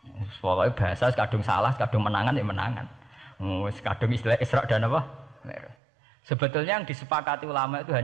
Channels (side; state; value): left; drops out; at 5.8 s